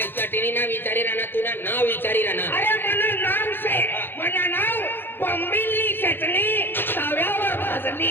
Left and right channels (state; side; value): late; right; 0.10 ms